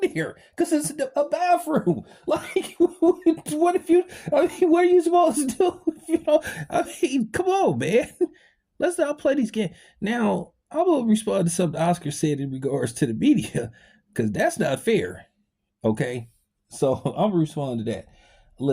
here because it's a bathroom. Like, what if you, I mean, what are you supposed to do? You know, I mean, come on, man. Let's not play these games. Now, I will respond to something Oscar said in regards to the media because that's not fair. Okay. So I'm responding to that.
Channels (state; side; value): identical; both; correlation 1.00